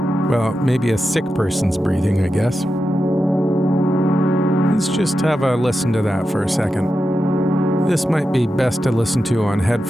Well, maybe a sick person's breathing, I guess. Let's just have a listen to that for a second. This might be best to listen to on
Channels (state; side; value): normal; both; correlation 0.90